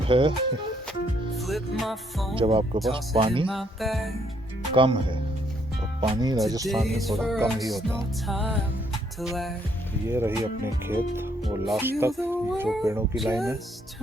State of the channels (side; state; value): both; normal; correlation 0.70